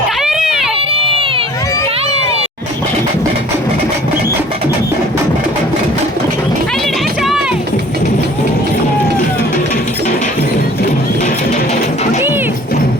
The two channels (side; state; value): both; normal; correlation 0.50